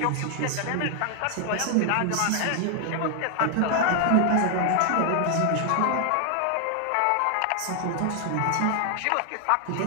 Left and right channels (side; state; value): both; different; correlation 0.00